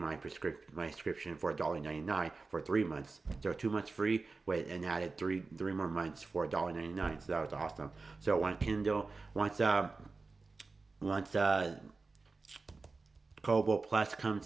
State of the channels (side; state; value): left; quieter; 3.9 dB